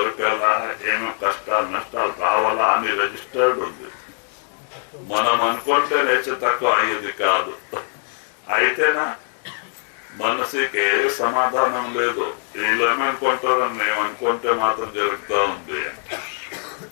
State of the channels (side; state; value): right; silent; 62 dB below the other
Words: ఏమేమి కష్టాలు నష్టాలు రావాలా అని రిజిస్టర్డ్ ఉంది. మనం అనుకుంటే నేర్చే తక్కువ అయ్యేది కాదు. అయితేనా మనసుకి ఏ సమాధానం లేదు. వీళ్ళు ఏమనుకుంటారని మేము అనుకుంటే మాత్రం జరుగుతూ ఉంది.